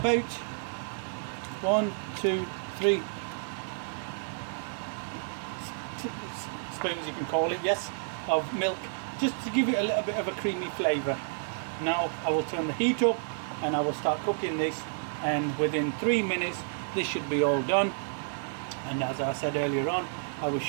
1, 2, 3 spoons, you can call it, yes, of milk, just to give it a little bit of a creamy flavour. Now I will turn the heat up and I will start cooking this, and within 3 minutes this should be all done. And as I said earlier on, I will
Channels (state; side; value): silent; left; digital silence